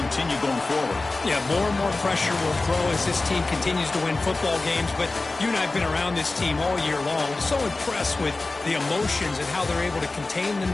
going forward. Yeah, more and more pressure will grow as this team continues to win football games. But you and I have been around this team all year long. So impressed with the emotions and how they're able to contain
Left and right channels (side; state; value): right; quieter; 3.3 dB